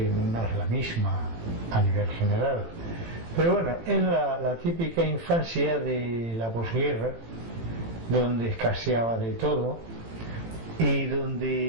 no es la misma a nivel general. Pero bueno, es la típica infancia de la posguerra, donde escaseaba de todo y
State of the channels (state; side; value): late; left; 18 ms